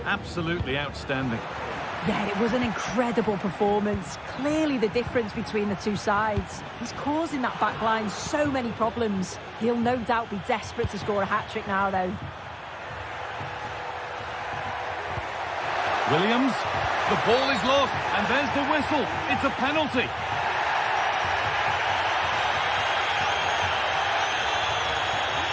Absolutely outstanding. Yeah, it was an incredible performance. Clearly the difference between the two sides. He's causing that back line so many problems. He'll no doubt be desperate to score a hat-trick now, though. Williams, the ball is lost, and there's the whistle. It's a penalty.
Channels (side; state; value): both; identical; correlation 1.00